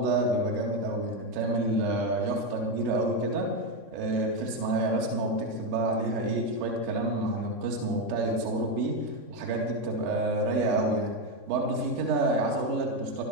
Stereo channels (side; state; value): left; late; 3.6 ms